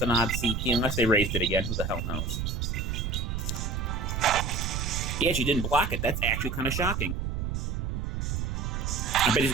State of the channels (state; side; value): noise; right; rumble, 2 dB below the sound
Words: odd CP, unless they raised it again. Who the hell knows? He actually didn't block it. That's actually kind of shocking. I bet he's